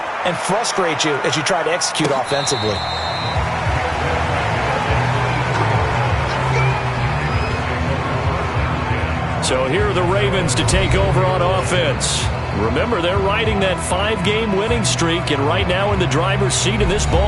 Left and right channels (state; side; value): identical; both; correlation 1.00